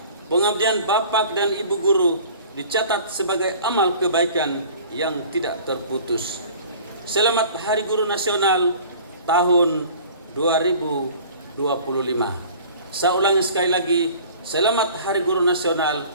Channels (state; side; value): inverted; both; correlation -0.46